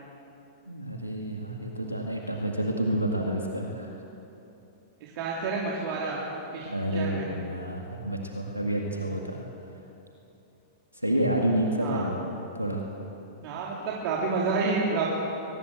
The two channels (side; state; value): both; inverted; correlation -0.43